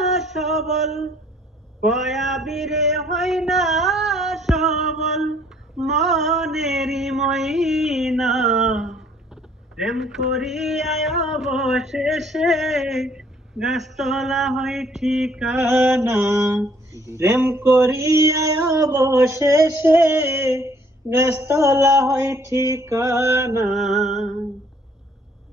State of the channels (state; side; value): normal; both; correlation 0.62